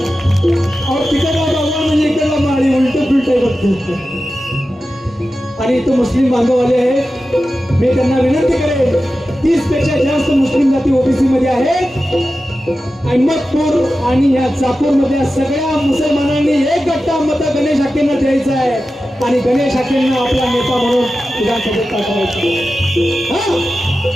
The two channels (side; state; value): both; normal; correlation 0.93